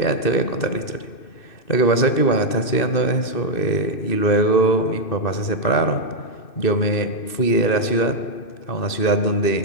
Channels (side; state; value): right; late; 2.6 ms